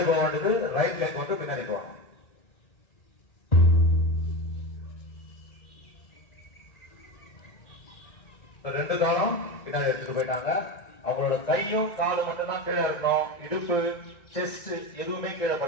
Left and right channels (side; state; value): right; late; 1.6 ms